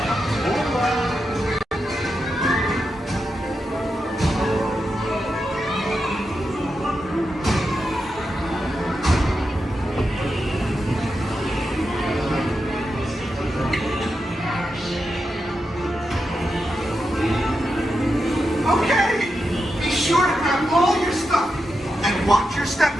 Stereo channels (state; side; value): normal; both; correlation 0.88